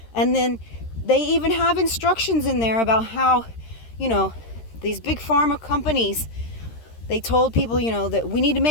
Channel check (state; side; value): late; right; 13 ms